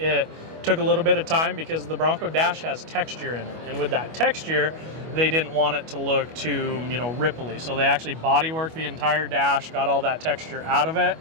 took a little bit of time because the Bronco dash has texture in it. And with that texture, they didn't want it to look too, ripply. So they actually bodyworked the entire dash, got all that texture out of it,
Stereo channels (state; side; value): late; left; 25 ms